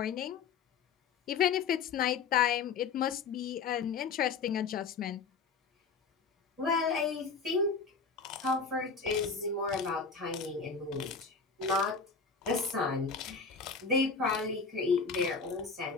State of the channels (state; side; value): quieter; right; 5.2 dB